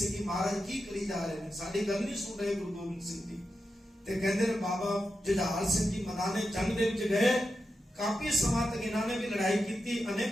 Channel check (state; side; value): normal; both; correlation 0.89